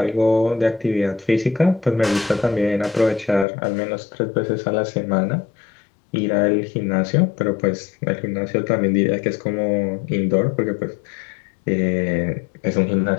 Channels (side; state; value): right; drops out; at 3.5 s